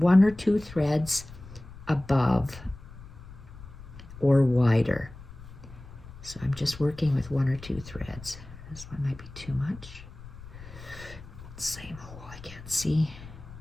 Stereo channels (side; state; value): left; noise; rumble, 16 dB below the sound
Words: or 2 threads above or wider. So I'm just working with 1 or 2 threads. This one might be too much. Same hole, I can't see.